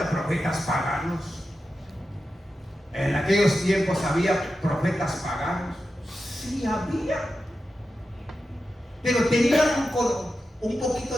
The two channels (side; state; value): both; normal; correlation 0.91